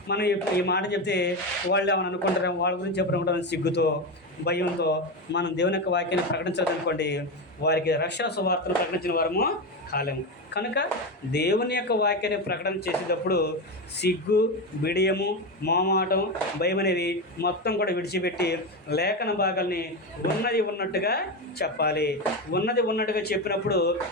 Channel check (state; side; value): normal; both; correlation 0.16